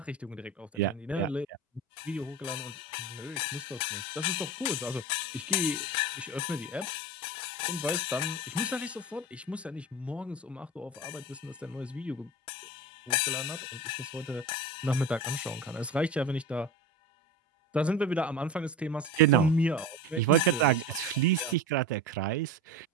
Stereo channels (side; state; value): both; normal; correlation 0.29